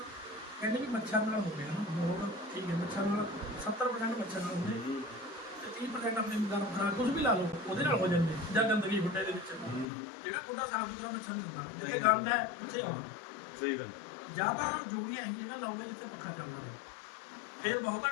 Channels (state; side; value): drops out; right; at 9.9 s